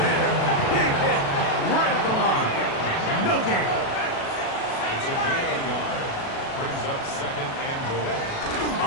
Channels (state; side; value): late; right; 36 ms